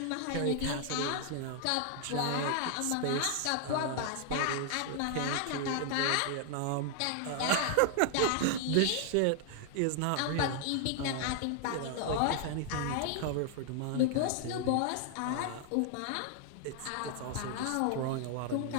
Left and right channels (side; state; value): both; different; correlation 0.00